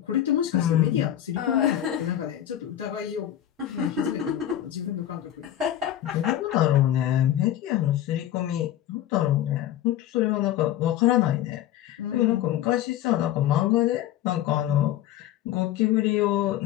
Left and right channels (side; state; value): right; quieter; 12.2 dB